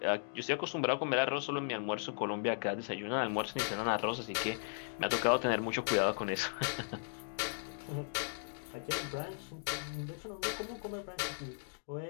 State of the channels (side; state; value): right; silent; digital silence